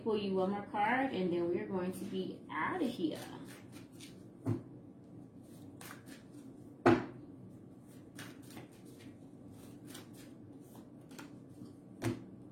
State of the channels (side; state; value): both; identical; correlation 1.00